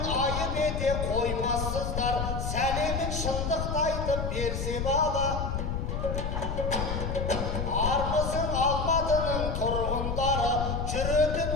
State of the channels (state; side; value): noise; left; rumble, 2 dB below the sound